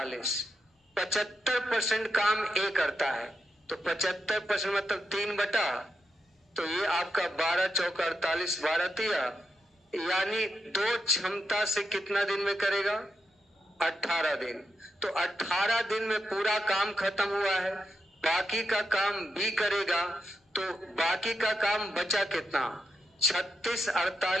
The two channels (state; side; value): normal; both; correlation 0.84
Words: 75% काम ए करता है, तो 75% मतलब 3 बटा, तो ये आपका 12 चौका 48, 12 तिया, यानी 2 क्षमता से कितना दिन में करेगा? 18 दिन। तो 18 दिन में पूरा काम खत्म हुआ है, बाकी का काम बी करेगा, तो बाकी का काम बचा कितना? 36